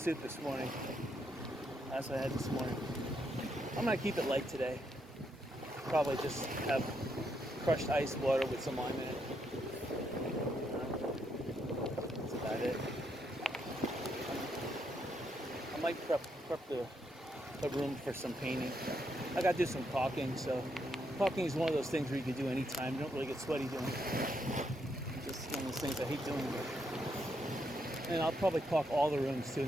this morning. That's what I had this morning. I'm gonna keep it light today. Probably just have crushed ice water with some lime in it. That's about it. I might prep the room for some painting. I gotta do some caulking, so caulking is one of those things where you can do anytime. You don't really get sweaty doing it. Just one of those things I hate doing. And I'll probably caulk all the rooms too,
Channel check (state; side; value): normal; both; correlation 0.78